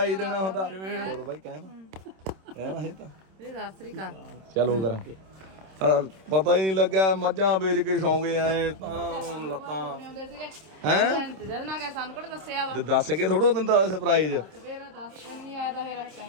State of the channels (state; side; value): late; left; 26 ms